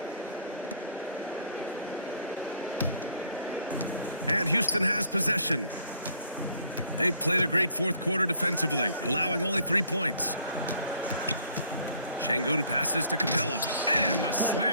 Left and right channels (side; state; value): both; inverted; correlation -0.60